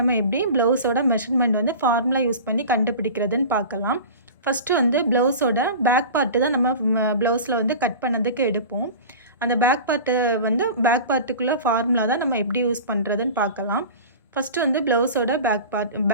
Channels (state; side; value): inverted; both; correlation -0.35